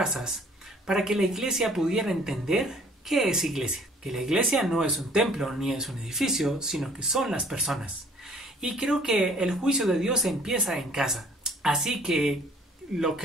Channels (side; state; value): both; normal; correlation 0.56